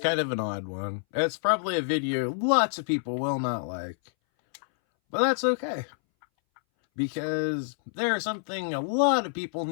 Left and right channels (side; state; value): right; silent; 60 dB below the other